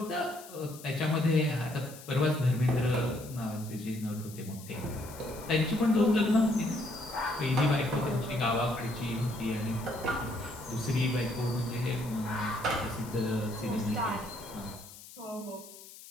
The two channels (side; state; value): left; noise; hiss, 17 dB below the sound